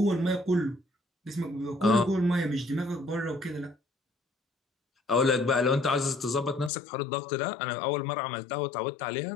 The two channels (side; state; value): right; drops out; at 6.7 s